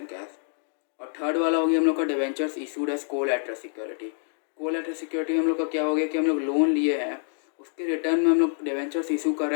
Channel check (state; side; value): silent; right; digital silence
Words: cash. और थर्ड वाला हो गया हम लोग का debentures issued as collateral security. Collateral security हम लोग का क्या हो गया कि हम लोग लोन लिए हैं, उसके रिटर्न में हम लोग डिवेंचर्स इशू कर रहे